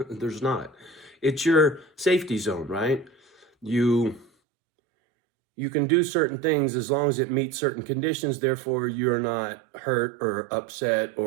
There's not. It's your safety zone, right? You can do certain things as long as it meets certain conditions. Therefore, you're not hurt or upset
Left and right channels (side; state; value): left; drops out; at 4.3 s